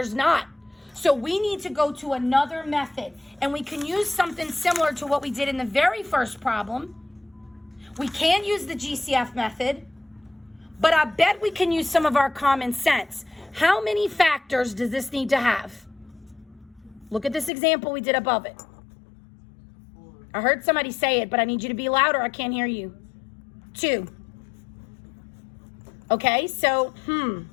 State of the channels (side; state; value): right; drops out; at 17.5 s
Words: not. So we need to go to another method. And we can use something similar to what we did in the very first problem. We can use the GCF method, but I bet we can use some of our common sense. How many factors does this need to have? Look at this example we did above it. I heard somebody say it, but I need you to be louder. I can't hear you. 2. Okay, so,